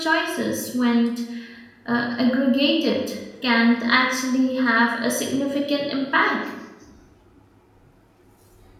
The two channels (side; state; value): both; identical; correlation 1.00